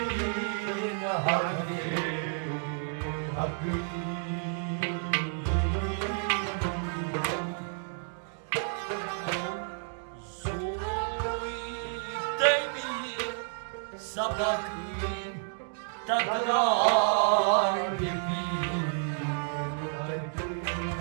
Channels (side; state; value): left; silent; 57 dB below the other